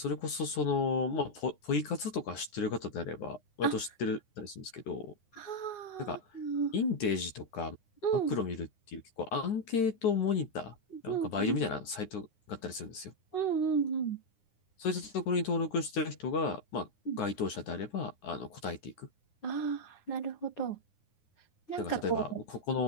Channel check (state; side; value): late; right; 9.7 ms